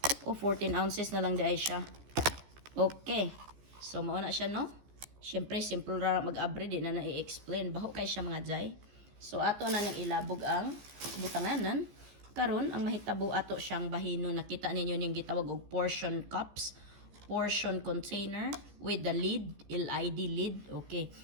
14 ounces na lang diay siya. Okay. So mao na siya no. Syempre simple ra mag-abri di na na-i-explain. Baho kay siya mga Jai. So ato na nang ilabog ang butanganan. Karon ang mahitabo ato siyang bahino, nakita ninyo ning gitawag og portion cups, portion container with the lid, LID lid. Okay.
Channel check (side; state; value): left; late; 15 ms